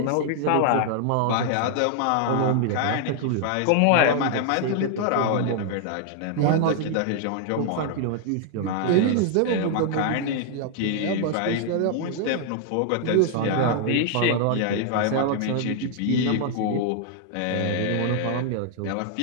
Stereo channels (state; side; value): different; both; correlation 0.00